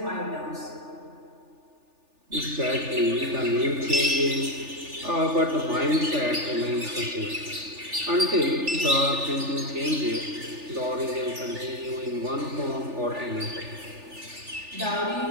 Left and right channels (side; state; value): left; late; 3.4 ms